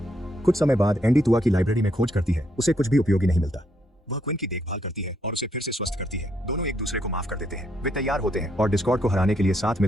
कुछ समय बाद एंडी तुआ की लाइब्रेरी में खोज करती है, उसे कुछ भी उपयोगी नहीं मिलता। वह क्विन की देखभाल करती है और उसे फिर से स्वस्थ करती है। दोनों एक दूसरे को माफ कर देते हैं। वे तैयार होते हैं और डिस्कॉर्ड को हराने के लिए साथ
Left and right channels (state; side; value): normal; both; correlation 0.75